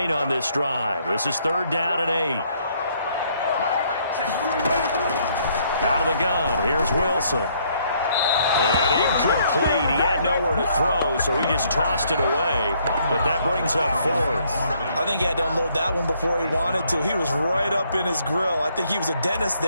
on this drive. This is 3rd down and 8. Out of the gun, here's Wilson. And incomplete. He had nowhere to throw, so he just tossed it away. But that brings up 4th. I think he had to unload that one before he wanted to. He was right up in his grill. I think he was a dentist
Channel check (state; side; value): inverted; both; correlation -0.68